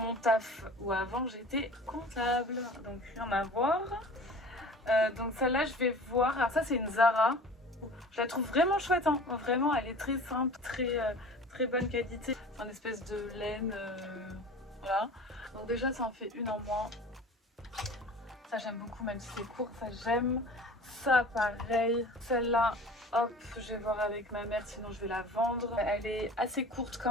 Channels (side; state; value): both; normal; correlation 0.41